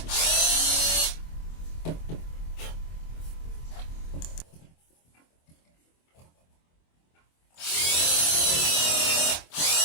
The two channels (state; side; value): late; right; 24 ms